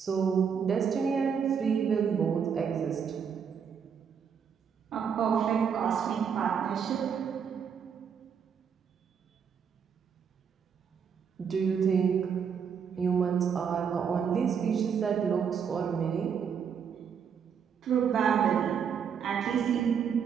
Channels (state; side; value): quieter; left; 7.1 dB